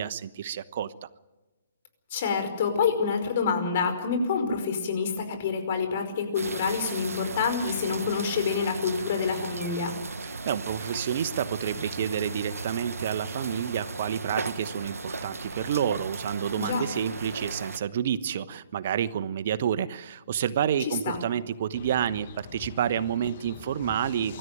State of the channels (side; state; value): both; inverted; correlation -0.55